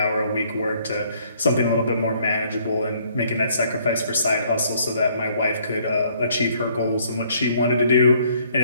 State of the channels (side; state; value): both; inverted; correlation -0.64